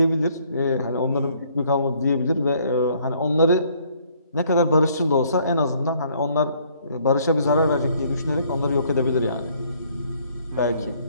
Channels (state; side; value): inverted; both; correlation -0.64